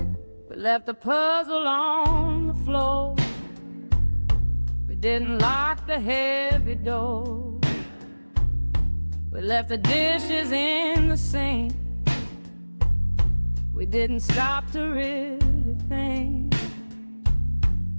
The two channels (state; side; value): inverted; both; correlation -1.00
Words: We left the puzzle on the floor, we didn't lock the heavy door. We left the dishes in the sink, we didn't stop to really think.